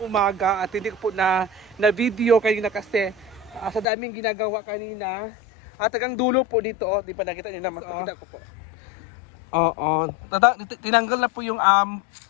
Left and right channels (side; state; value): right; drops out; at 3.9 s